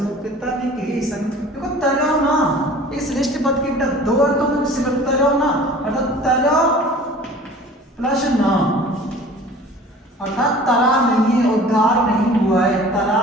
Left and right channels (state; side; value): normal; both; correlation 0.45